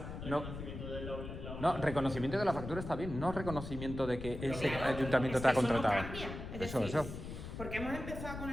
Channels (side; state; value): left; noise; rumble, 8 dB below the sound